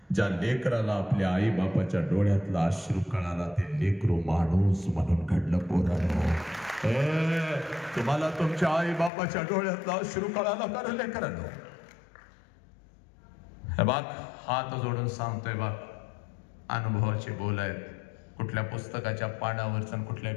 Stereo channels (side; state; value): right; drops out; at 9.1 s